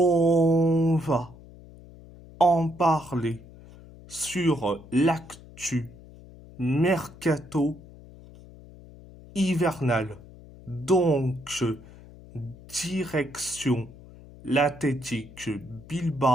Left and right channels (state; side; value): noise; left; hum, 20 dB below the sound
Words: va en parler sur l'actu mercato hivernal. Donc, direction l'Athletic